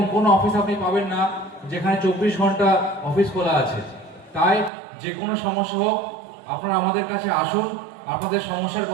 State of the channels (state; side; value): drops out; left; at 4.7 s